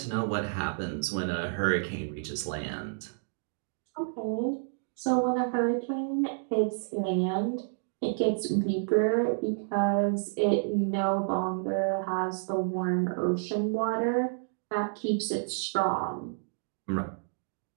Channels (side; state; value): left; silent; digital silence